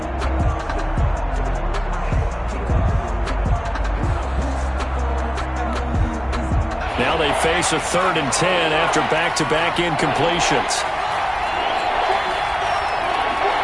Now they face a 3rd and 10 after back-to-back incompletions.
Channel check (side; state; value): both; identical; correlation 1.00